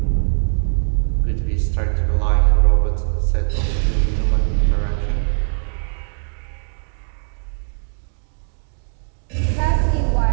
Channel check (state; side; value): silent; left; digital silence